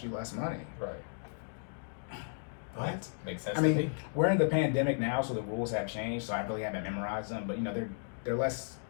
you less money. Right. But makes sense. I mean, we're in the pandemic now, so the rules have changed. So I really haven't memorized them, but they're less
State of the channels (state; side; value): silent; right; digital silence